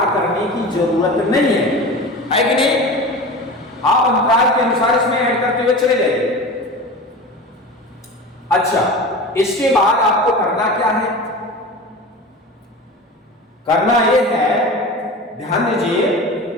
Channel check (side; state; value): both; normal; correlation 0.32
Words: करने की जरूरत नहीं है कि नहीं? आप अंतराल के अनुसार इसमें ऐड करते हुए चले जाइए। अच्छा, इसके बाद आपको करना क्या है? करना यह है, ध्यान दीजिए,